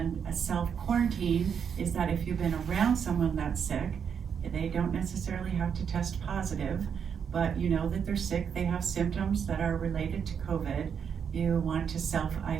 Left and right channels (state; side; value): quieter; left; 7.3 dB